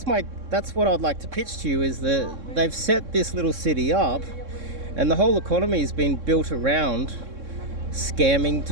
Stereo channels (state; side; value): late; left; 3.6 ms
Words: what I'd like to pitch to you, is that they've set this little city up and the whole economy has been built around scamming